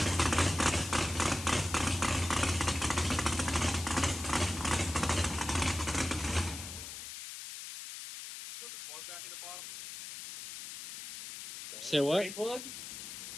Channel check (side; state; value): left; noise; hiss, 10 dB below the sound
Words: Say what? Plug?